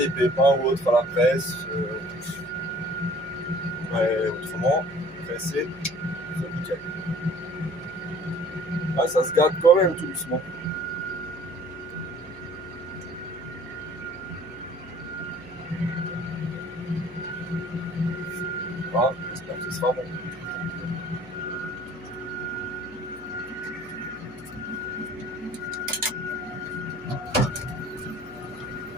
pépins ou autres à la presse. Mais autrement, presser, c'est nickel. Ah, ça se gâte quand même tout doucement. Voilà, j'espère que ce sera bon.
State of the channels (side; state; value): left; noise; hum, 21 dB below the sound